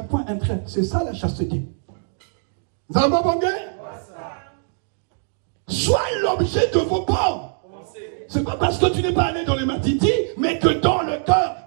point, un trait, c'est ça la chasteté. Zamba Bangé. Soit l'objet de vos pensées. C'est pas parce que tu n'es pas allé dans les matiti, mais que dans le cœur,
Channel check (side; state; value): left; silent; digital silence